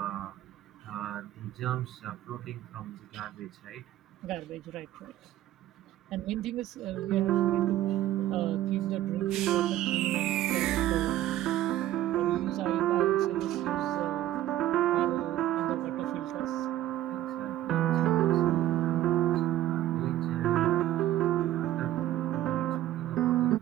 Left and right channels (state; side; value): quieter; left; 13.6 dB